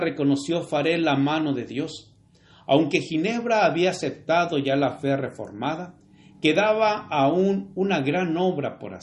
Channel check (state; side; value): identical; both; correlation 1.00